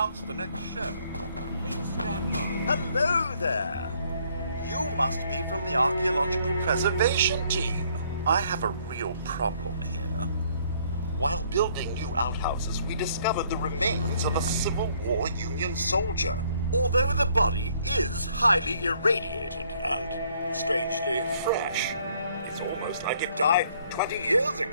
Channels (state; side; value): inverted; both; correlation -0.64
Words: the next show. Please stand by. Hello there! You must be from the Archaeological Preservation Team. I have a real problem here. While building new outhouses, we discovered the remains of a Civil War Union soldier. Although the body is highly irradiated and strangely fresh, it's almost like it died 20 years